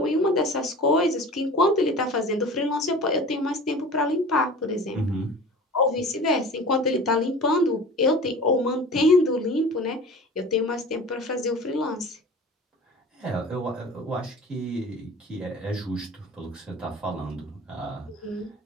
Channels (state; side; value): normal; both; correlation 0.39